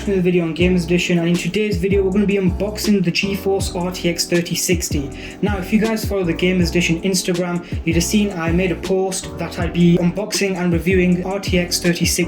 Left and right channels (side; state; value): both; identical; correlation 1.00